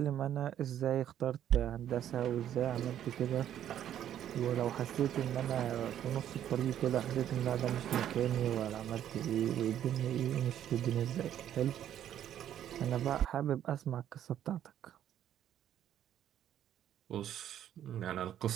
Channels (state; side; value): quieter; left; 10.7 dB